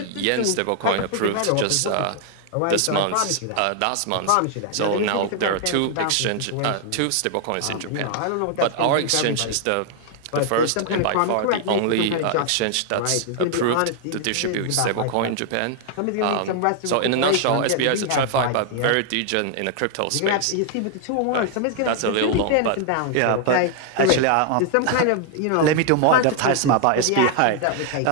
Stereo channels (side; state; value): both; different; correlation 0.00